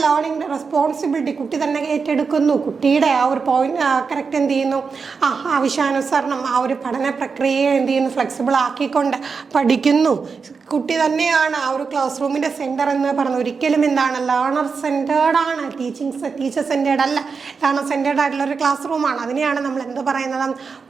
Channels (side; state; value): left; quieter; 5.2 dB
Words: റെസ്പോൺസിബിലിറ്റി കുട്ടി തന്നെ ഏറ്റെടുക്കുന്നു. കുട്ടിയുടെ ആ ഒരു പോയിന്റ് കറക്റ്റ് എന്ത് ചെയ്യുന്നു, ആവശ്യാനുസരണം ആ ഒരു പഠന പ്രക്രിയയെ എന്ത് ചെയ്യുന്നു, ഫ്ലെക്സിബിൾ ആക്കിക്കൊണ്ട് പഠിക്കുന്നു. കുട്ടി തന്നെയാണ് ആ ഒരു ക്ലാസ് റൂമിൻ്റെ സെൻറ്റർ എന്ന് പറയുന്നത്. ഒരിക്കലും എന്താണ് ലേണർ സെൻറ്റേർഡ് ആണ്, ടീച്ചർ സെൻറ്റേർഡ് അല്ല, ലേണർ സെൻറ്റേർഡ് ആയിട്ടുള്ള ഒരു ക്ലാസ് റൂമാണ്. അതിനെയാണ് നമ്മൾ എന്ത് പറയുന്നത്?